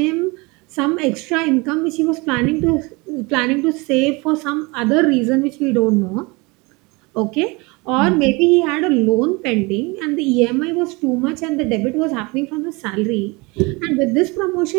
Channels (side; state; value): left; quieter; 26.1 dB